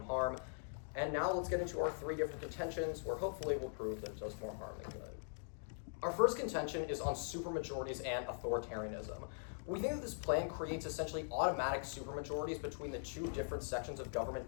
harm. And now let's get into our 3 different contentions, where hopefully we'll prove that it does more harm than good. Our first contention is on supermajorities and authoritarianism. We think that this plan creates essentially automatic supermajorities between the 2 different sections of government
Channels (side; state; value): right; silent; digital silence